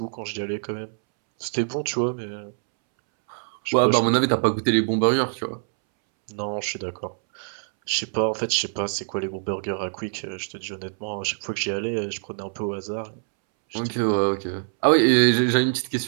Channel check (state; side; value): silent; left; 62 dB below the other